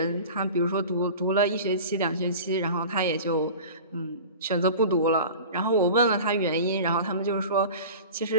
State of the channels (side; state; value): both; inverted; correlation -0.37